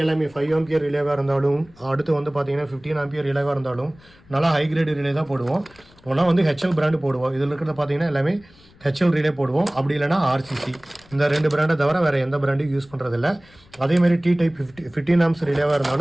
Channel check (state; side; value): noise; left; rumble, 27 dB below the sound